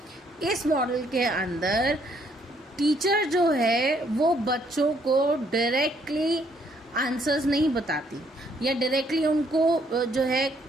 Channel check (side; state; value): both; normal; correlation 0.68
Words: इस मॉडल के अंदर टीचर जो है वो बच्चों को डायरेक्टली आंसर्स नहीं बताती या डायरेक्टली उनको जो है